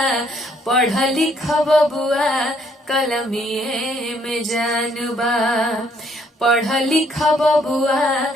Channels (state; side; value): normal; both; correlation 0.67